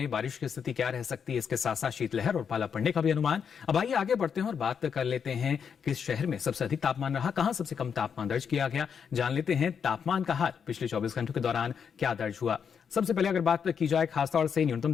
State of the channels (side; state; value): right; quieter; 7.0 dB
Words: बारिश की स्थिति क्या रह सकती है, इसके साथ साथ शीतलहर और पाला पड़ने का भी अनुमान। अब आइए आगे बढ़ते हैं और बात कर लेते हैं किस शहर में सबसे अधिक तापमान रहा, कहां सबसे कम तापमान दर्ज किया गया। जान लेते हैं तापमान का हाल पिछले 24 घंटों के दौरान क्या दर्ज हुआ। सबसे पहले अगर बात की जाए खासतौर से न्यूनतम